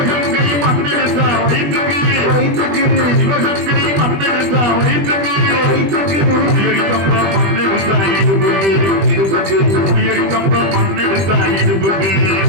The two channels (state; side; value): late; left; 20 ms